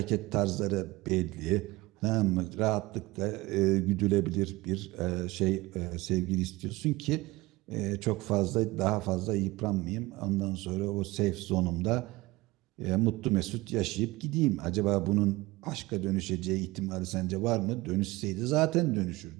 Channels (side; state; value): left; quieter; 21.1 dB